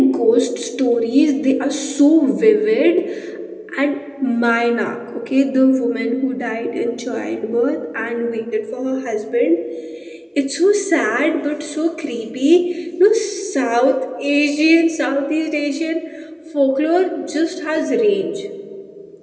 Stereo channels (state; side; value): identical; both; correlation 1.00